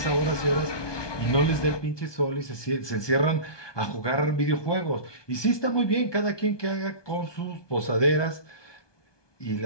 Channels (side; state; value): right; late; 1.2 ms